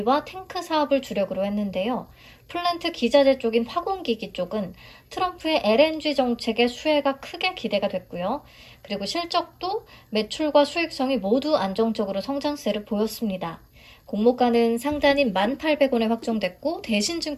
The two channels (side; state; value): both; identical; correlation 1.00